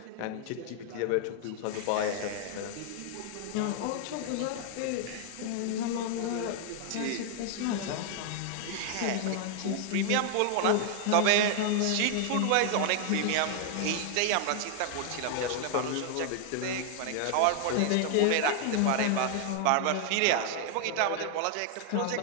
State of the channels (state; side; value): different; both; correlation 0.00